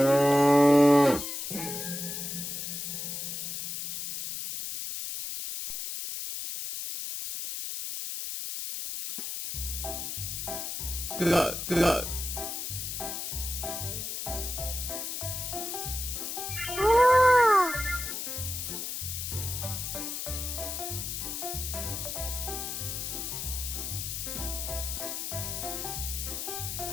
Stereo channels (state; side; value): noise; left; hiss, 4 dB below the sound